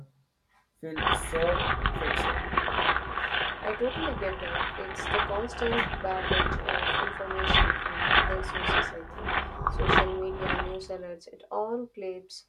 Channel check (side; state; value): both; identical; correlation 1.00